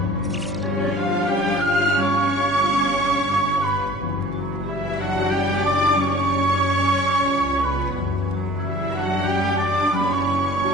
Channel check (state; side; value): normal; both; correlation 0.48